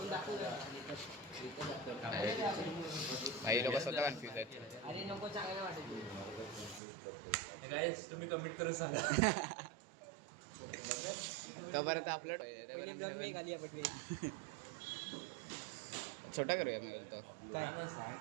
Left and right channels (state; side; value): drops out; left; at 6.8 s